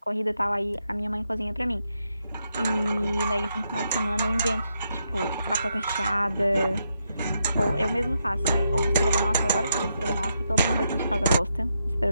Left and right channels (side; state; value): both; inverted; correlation -0.81